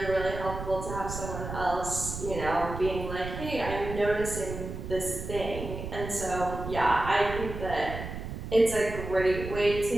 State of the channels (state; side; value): noise; right; rumble, 7 dB below the sound